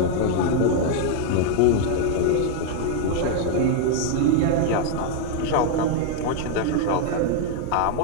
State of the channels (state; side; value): different; both; correlation 0.00